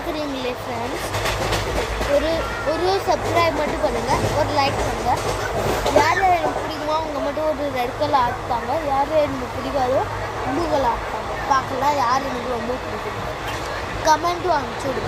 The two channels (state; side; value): identical; both; correlation 1.00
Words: ஃப்ரெண்ட்ஸ், ஒரு சப்ஸ்கிரைப் மட்டும் பண்ணுங்கள், ஒரு லைக் பண்ணுங்கள். யார் எனக்கு பிடிக்குமோ அவங்க மட்டும் ஒரு ரெட் கலர் ஆக்குவாங்க, யார் எனக்கு பிடிக்காதோ ப்ளூ கலர் ஆக்குவாங்க. பார்க்கலாம் யார் எனக்கு ரொம்ப பிடிக்கும், கமெண்ட்டும் அனுப்பிச்சி